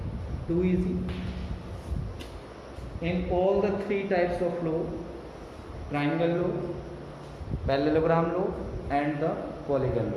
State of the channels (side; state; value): both; identical; correlation 1.00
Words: Too easy. In all the 3 types of law, triangle law, parallelogram law and the polygon